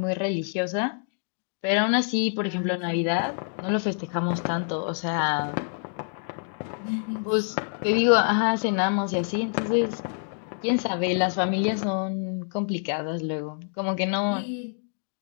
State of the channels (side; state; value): right; silent; digital silence